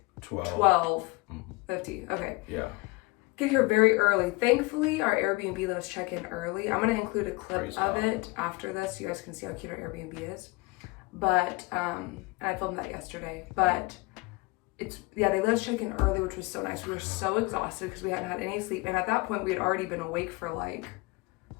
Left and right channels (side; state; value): right; quieter; 24.3 dB